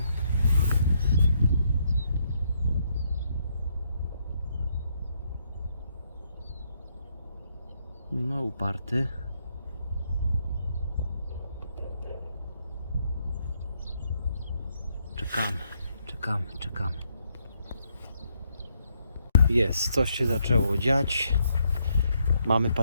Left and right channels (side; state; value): both; inverted; correlation -0.75